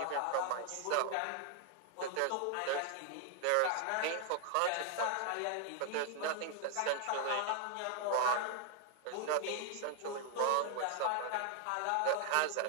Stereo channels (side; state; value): both; different; correlation 0.00